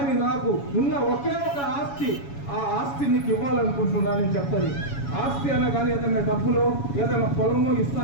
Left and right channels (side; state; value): right; late; 7.1 ms